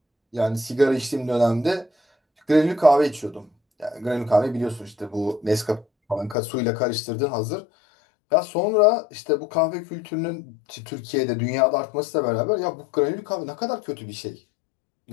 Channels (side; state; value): right; drops out; at 6.4 s